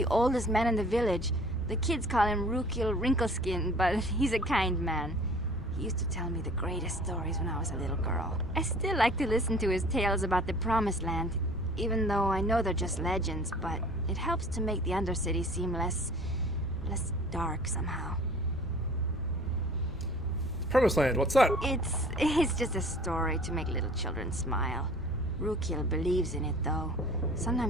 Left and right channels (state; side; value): normal; both; correlation 0.48